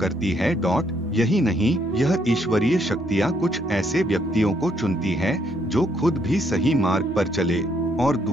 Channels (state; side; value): normal; both; correlation 0.71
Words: है। यही नहीं, यह ईश्वरीय शक्तियां कुछ ऐसे व्यक्तियों को चुनती है जो खुद भी सही मार्ग पर चले और